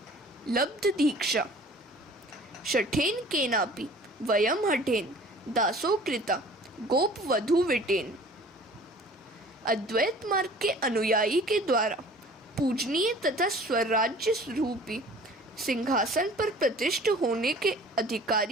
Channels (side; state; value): both; normal; correlation 0.48